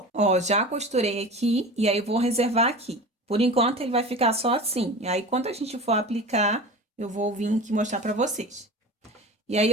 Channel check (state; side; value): normal; both; correlation 0.34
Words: Ó, já costurei aqui e aí eu vou reservar aqui. Por enquanto, ele vai ficar só assim. E aí, quando a gente for aplicar, eu vou vir aqui mostrar pra vocês. E aí,